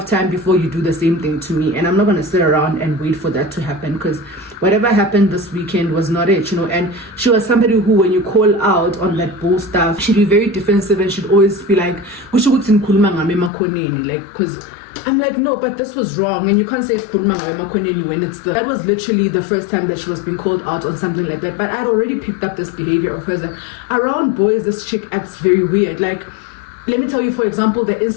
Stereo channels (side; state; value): right; drops out; at 13.5 s